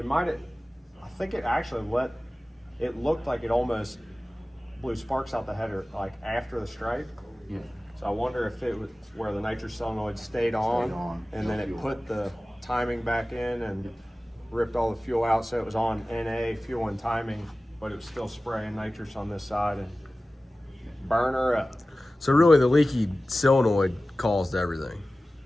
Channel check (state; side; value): normal; both; correlation 0.96